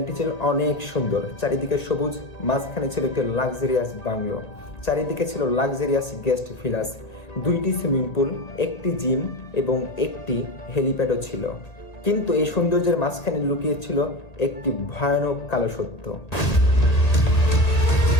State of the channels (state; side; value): late; right; 1.8 ms